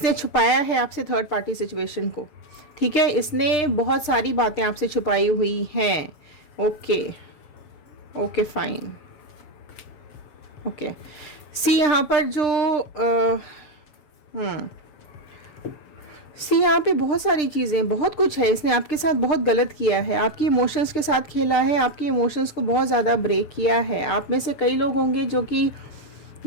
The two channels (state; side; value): late; right; 6.7 ms